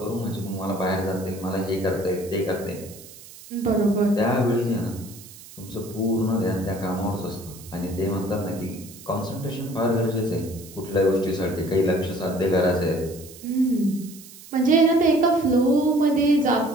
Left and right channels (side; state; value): right; noise; hiss, 18 dB below the sound